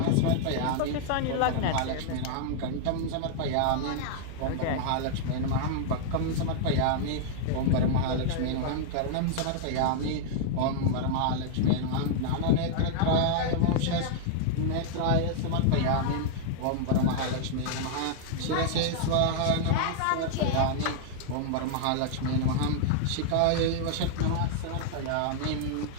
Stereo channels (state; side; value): different; both; correlation -0.01